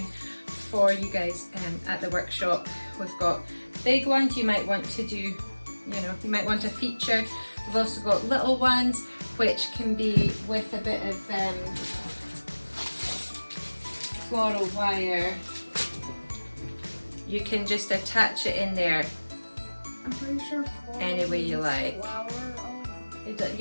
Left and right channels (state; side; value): inverted; both; correlation -1.00